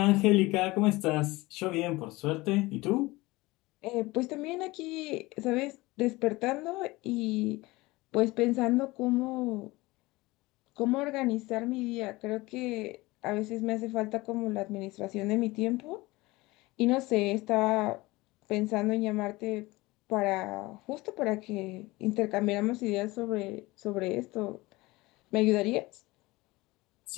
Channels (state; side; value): quieter; right; 21.1 dB